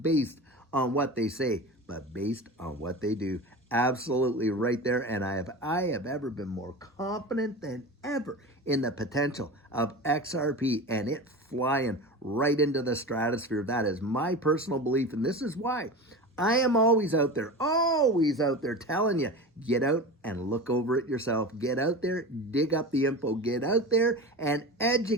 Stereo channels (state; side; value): normal; both; correlation 0.29